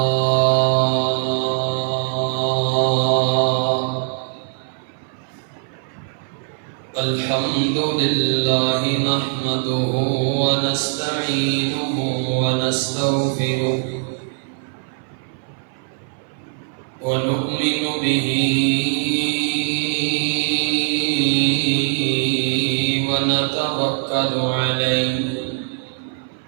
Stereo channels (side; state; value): left; silent; 59 dB below the other